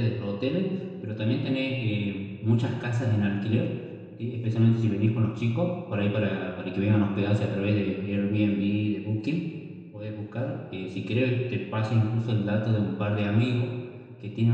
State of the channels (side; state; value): both; identical; correlation 1.00